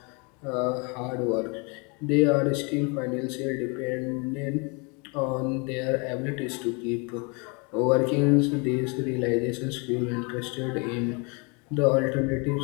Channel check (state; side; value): quieter; right; 32.0 dB